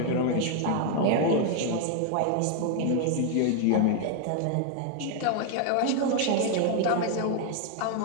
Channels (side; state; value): both; different; correlation 0.00